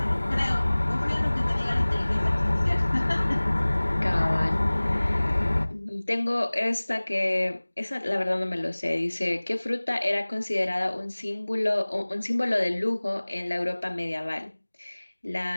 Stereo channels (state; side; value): inverted; both; correlation -1.00